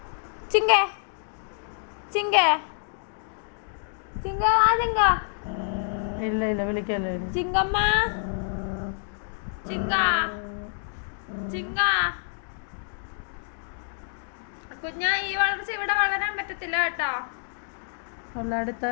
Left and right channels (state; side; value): silent; right; digital silence